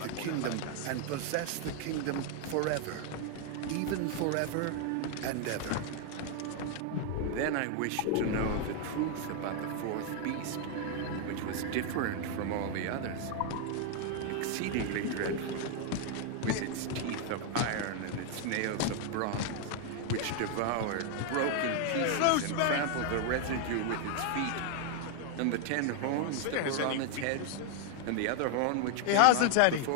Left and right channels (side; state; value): both; different; correlation 0.00